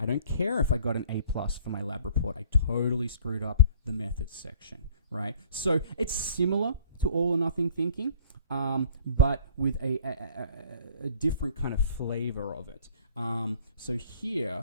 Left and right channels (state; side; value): inverted; both; correlation -0.51